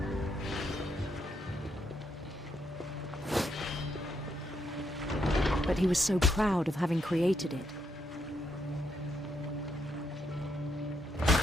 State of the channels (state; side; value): normal; both; correlation 0.78